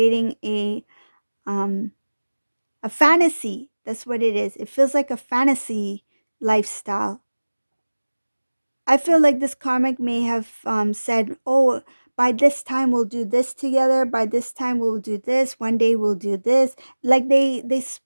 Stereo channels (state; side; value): inverted; both; correlation -1.00